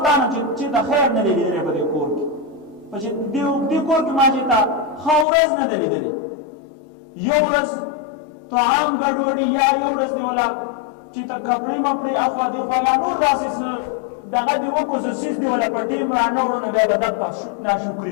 تا نه چې د خیر نه دی لیدلی په دې کور کې په دې کور کې ما چې تا ښه ورځ نه ده لیدلې یو ورځ طعام ګډوډي یا یو ورځ دی ولا چې ته کپړې مپړې اخوا دېخوا یا نور داسې دغه دې وکړو څه څیز دی ولا په ټیم رانه وړو نو بیا به دا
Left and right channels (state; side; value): drops out; right; at 5.2 s